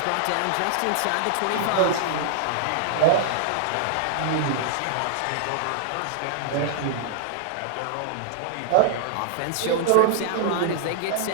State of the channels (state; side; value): different; both; correlation -0.01